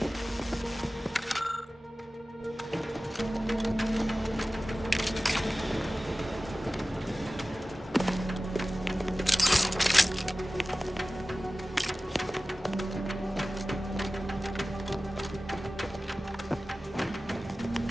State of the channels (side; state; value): both; normal; correlation 0.96